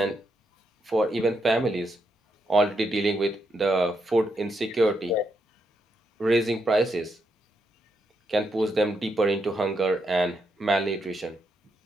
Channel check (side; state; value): both; normal; correlation 0.80